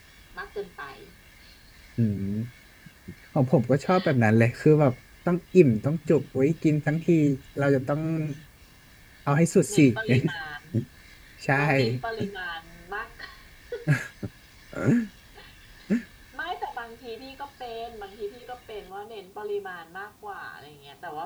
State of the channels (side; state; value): both; identical; correlation 1.00